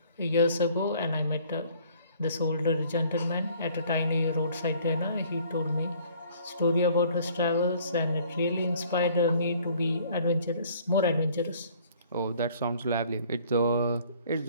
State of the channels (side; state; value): both; inverted; correlation -0.56